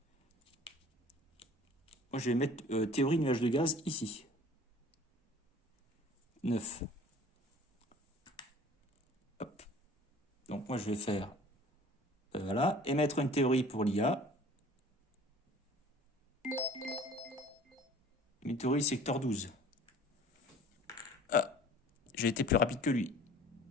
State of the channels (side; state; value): both; normal; correlation 0.48